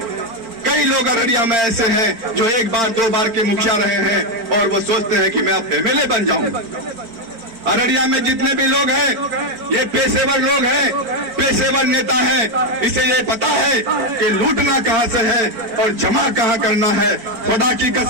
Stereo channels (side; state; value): left; late; 4.4 ms